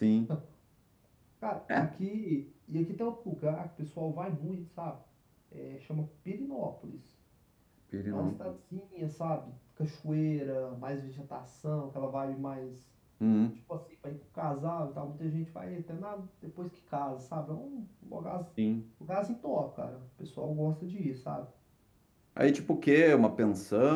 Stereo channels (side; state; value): both; identical; correlation 1.00